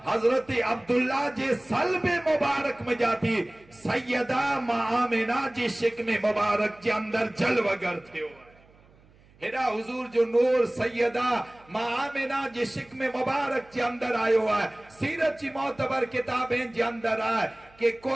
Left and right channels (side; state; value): right; noise; hum, 28 dB below the sound